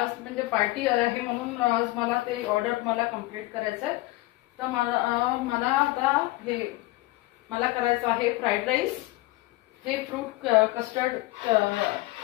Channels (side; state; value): right; quieter; 20.0 dB